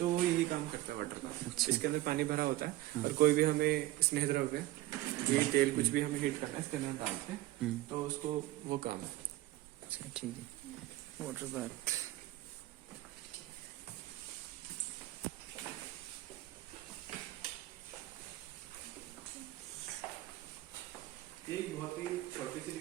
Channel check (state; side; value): quieter; left; 16.8 dB